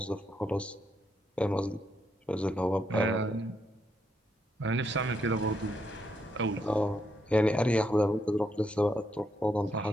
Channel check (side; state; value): both; normal; correlation 0.78